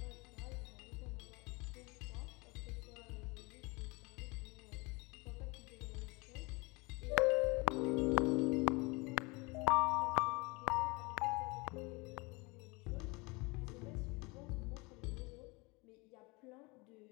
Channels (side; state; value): right; quieter; 26.5 dB